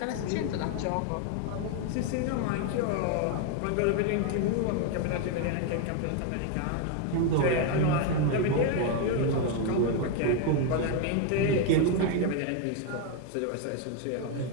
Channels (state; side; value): different; both; correlation 0.01